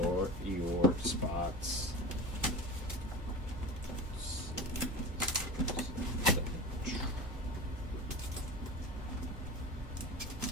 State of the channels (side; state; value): both; normal; correlation 0.31